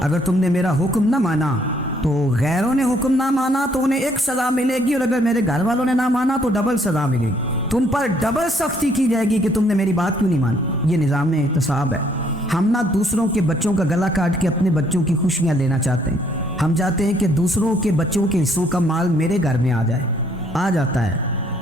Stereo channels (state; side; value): normal; both; correlation 0.66